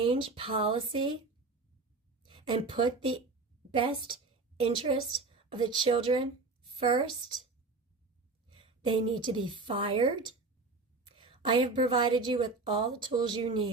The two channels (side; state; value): left; quieter; 3.7 dB